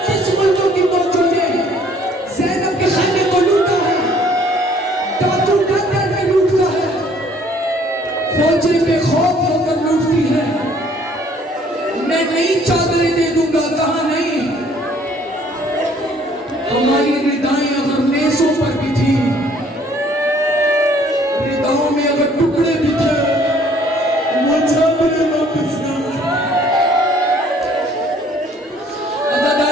मुल्कों की फौजों ने ज़ैनब के खाने को लूटा है, डाकू डर डर के लूटता है, फौजें बेखौफ होकर लूटती है। मैं नई चादरें दे दूंगा, कहा नहीं। हमारी रिदाएं अगर नेज़ों पर भी थी, रिदाओं में अगर टुकड़े भी थे, वो चादरें वापस ना।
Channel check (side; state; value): both; normal; correlation 0.59